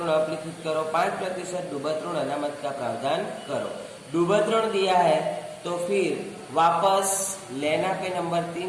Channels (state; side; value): identical; both; correlation 1.00